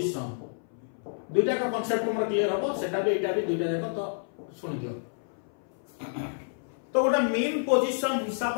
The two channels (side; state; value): right; silent; 58 dB below the other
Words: दुईटा का concept हमर clear हो सेटा भी एटा भी दुईटा देखो तो सुन दियो तो गोटे मेन पोजीशन हिसाब